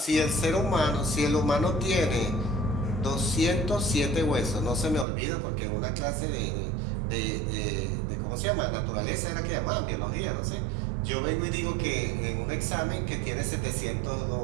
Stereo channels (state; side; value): drops out; left; at 5.1 s